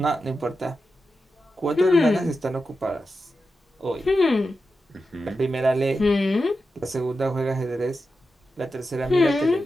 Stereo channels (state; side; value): normal; both; correlation 0.90